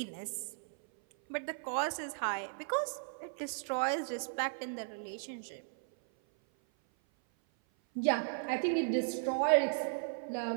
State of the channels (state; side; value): silent; left; 54 dB below the other